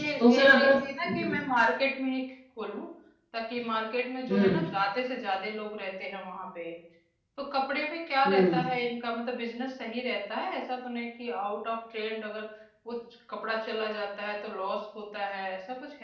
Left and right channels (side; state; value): both; identical; correlation 1.00